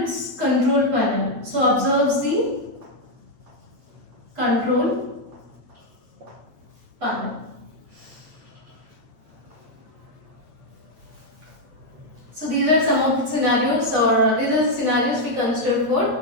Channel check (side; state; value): left; late; 8.5 ms